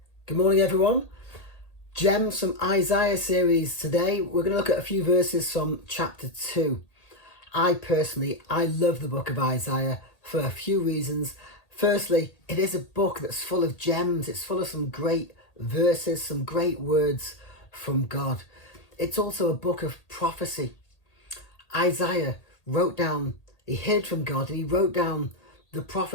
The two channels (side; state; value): right; late; 1.8 ms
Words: Good morning, everyone. Gems from Isaiah series today. We're going to look at a few verses from chapter 2. I love the book of Isaiah for a few reasons. Firstly, it is a book that's full of gems. It's full of some great verses, some great words from God. It's also a book of prophecy. Isaiah he heard from God and he wrote down the